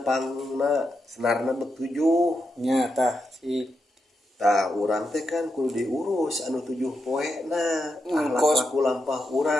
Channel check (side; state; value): both; normal; correlation 0.85